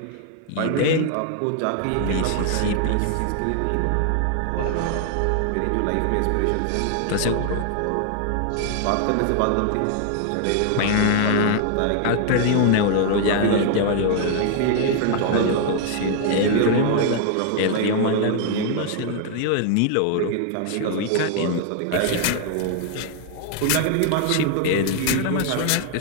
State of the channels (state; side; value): different; both; correlation 0.00